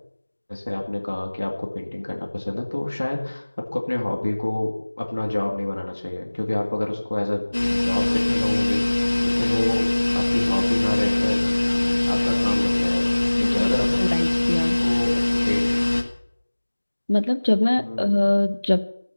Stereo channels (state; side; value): inverted; both; correlation -1.00